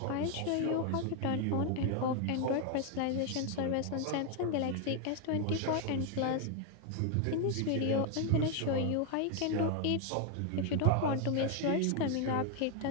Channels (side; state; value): both; different; correlation 0.01